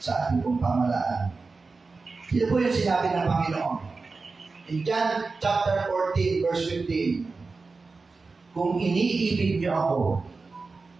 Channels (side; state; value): left; quieter; 4.1 dB